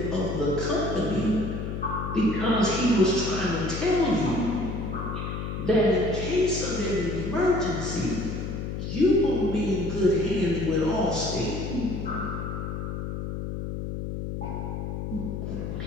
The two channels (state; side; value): noise; left; hum, 4 dB below the sound